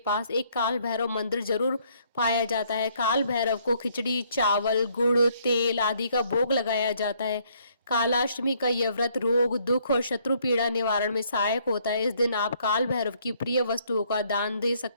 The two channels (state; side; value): inverted; both; correlation -0.67